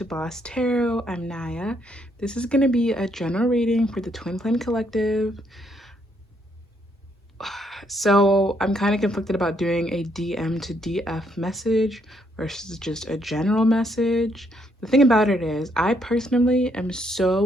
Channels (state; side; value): normal; both; correlation 0.72